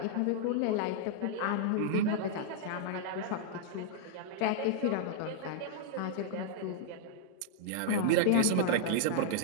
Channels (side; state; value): both; different; correlation -0.01